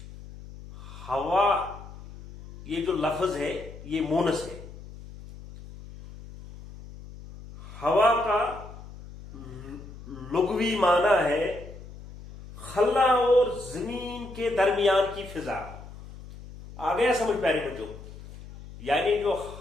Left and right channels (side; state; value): left; noise; hum, 15 dB below the sound